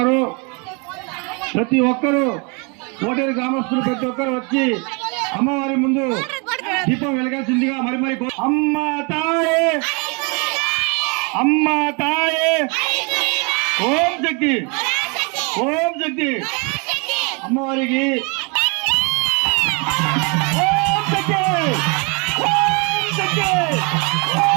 ప్రతి ఒక్కరూ కోటేరు గ్రామస్తులు ప్రతి ఒక్కరు వచ్చి అమ్మవారి ముందు దీపం వెలగాల్సిందిగా మరి అమ్మ తాయే అమ్మ తాయే ఓం శక్తి ఓం శక్తి అమ్మవారికి ఓం శక్తి ఓం శక్తి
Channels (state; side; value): quieter; left; 32.4 dB